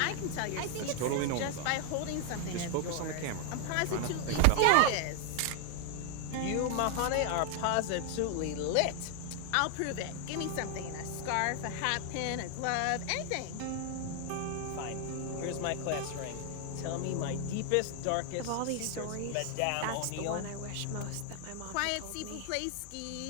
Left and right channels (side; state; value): both; different; correlation 0.00